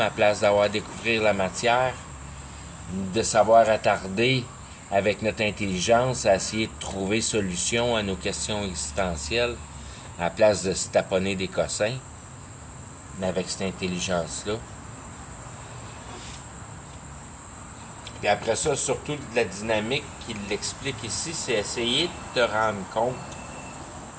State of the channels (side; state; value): both; identical; correlation 1.00